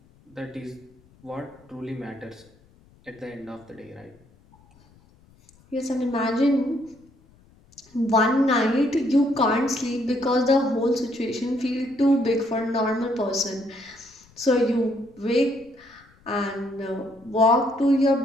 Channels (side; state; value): left; noise; rumble, 29 dB below the sound